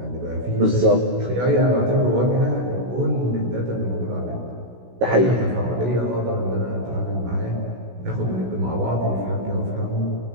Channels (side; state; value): left; late; 16 ms